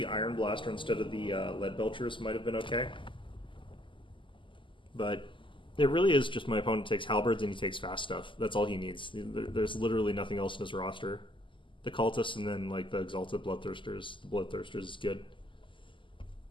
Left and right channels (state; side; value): late; right; 0.25 ms